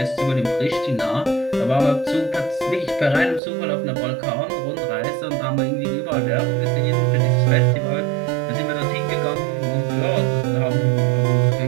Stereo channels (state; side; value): drops out; left; at 3.4 s